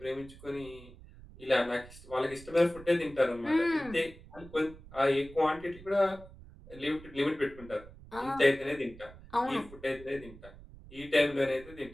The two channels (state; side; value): noise; right; rumble, 19 dB below the sound